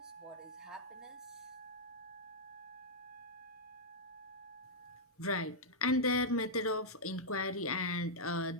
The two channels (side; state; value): both; normal; correlation -0.07